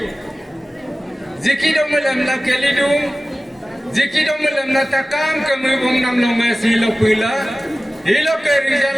zikidomul lamla kelidum zikidomul lamna takam kemubum nam long silo pula hilo ke rizal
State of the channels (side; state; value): both; normal; correlation 0.96